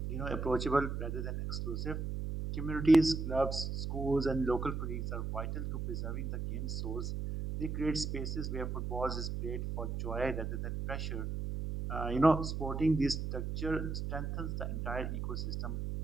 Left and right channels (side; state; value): right; noise; hum, 3 dB below the sound